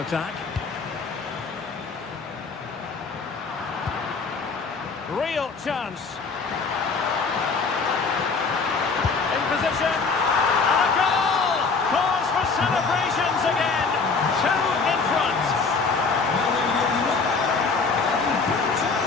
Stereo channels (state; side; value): quieter; right; 4.6 dB